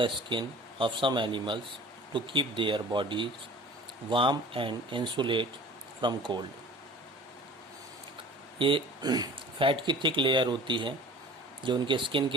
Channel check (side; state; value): both; normal; correlation 0.44